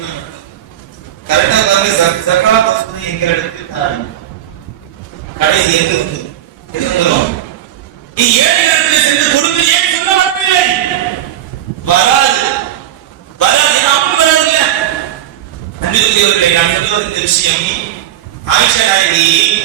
கரெக்டா பாருங்க. சக்காத் வசதி எங்க இடத்துல கடைசி எங்க வந்து எதுவும் நீ ஏழைகளுக்கு சென்று கொடுங்க ஏன் சொல்ல வரவில்லை? வராது வராது அப்படி வராது இல்ல. அன்பிற்குரியவர்களே, நான் சொல்லுவது இந்த விஷயம், ஆயிஷா நாயகி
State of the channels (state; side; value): quieter; left; 11.9 dB